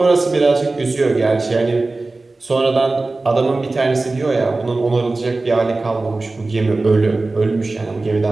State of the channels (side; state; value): left; quieter; 3.3 dB